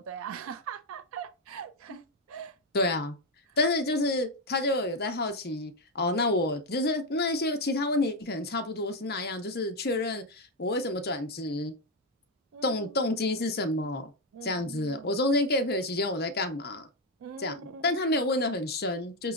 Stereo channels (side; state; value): both; normal; correlation 0.07